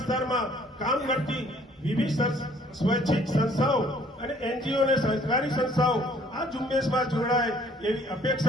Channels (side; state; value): both; normal; correlation 0.58